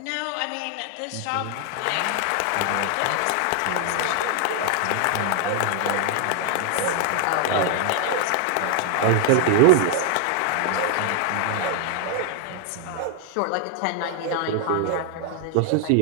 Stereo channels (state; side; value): different; both; correlation 0.00